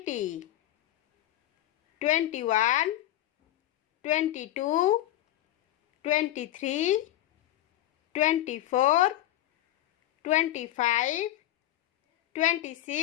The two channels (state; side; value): quieter; right; 14.2 dB